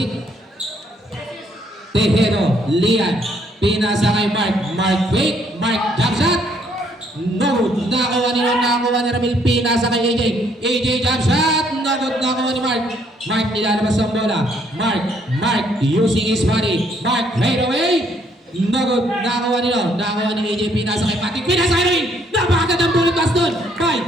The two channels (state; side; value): normal; both; correlation 0.67